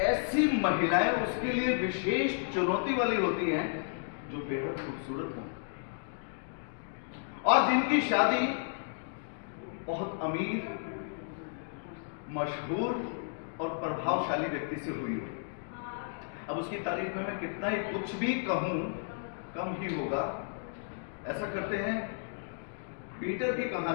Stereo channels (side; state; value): right; silent; digital silence